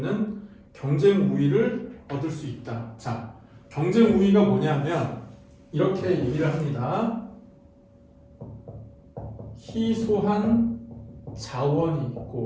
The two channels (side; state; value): both; identical; correlation 1.00